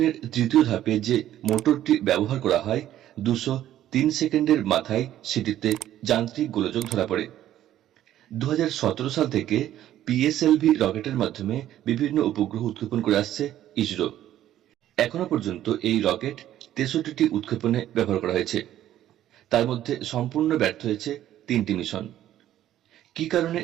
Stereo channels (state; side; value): quieter; left; 12.4 dB